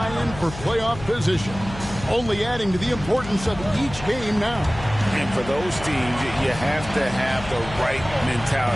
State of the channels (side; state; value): left; noise; hum, 12 dB below the sound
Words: for playoff position, only adding to the importance of each game now. And for those teams, you have to have the right